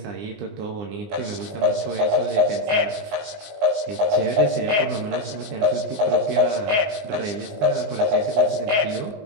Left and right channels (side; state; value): left; late; 19 ms